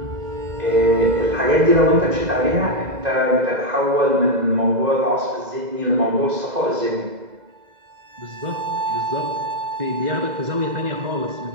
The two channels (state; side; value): late; left; 2.0 ms